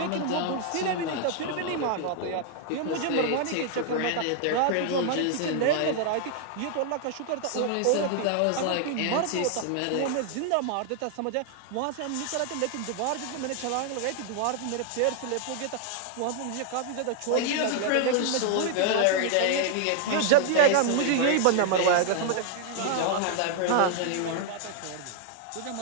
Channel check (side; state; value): both; different; correlation 0.00